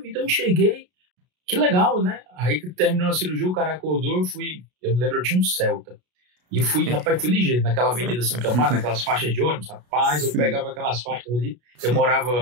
eu enxerguei. Que legal, né? Aí que terminou a cirurgia, o cara acordou, eu me lembro, eu tinha um Celta. E fui ligeiro, naquela Avenida Santa Marta, naquelas faixas de ônibus, rapaz, eu pegava aquelas faixas ali. Eu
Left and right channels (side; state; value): left; late; 33 ms